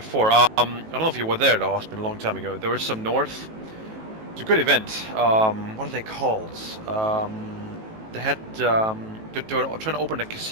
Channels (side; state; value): left; late; 18 ms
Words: I don't know if you were there though, it's been a long time ago. There was some north. It's a good event. What are they called? They had they were trying to open a